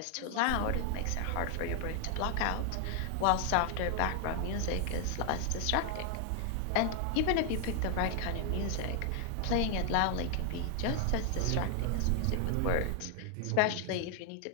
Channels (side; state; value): both; different; correlation 0.00